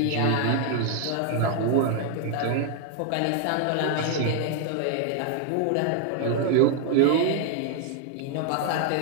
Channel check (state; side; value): different; both; correlation 0.00